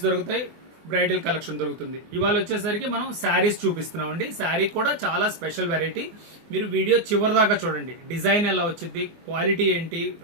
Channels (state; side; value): late; left; 24 ms